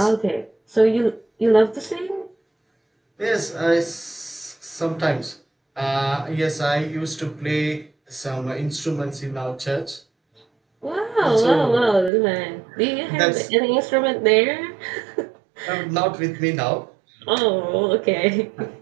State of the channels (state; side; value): drops out; left; at 12.1 s